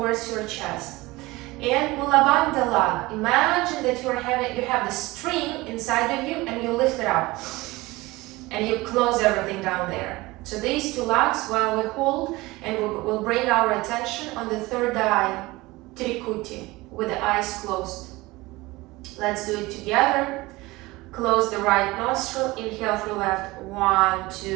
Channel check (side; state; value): left; quieter; 20.9 dB